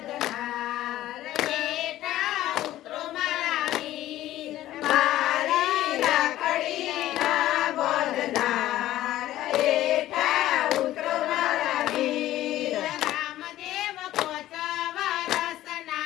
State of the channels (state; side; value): quieter; right; 14.3 dB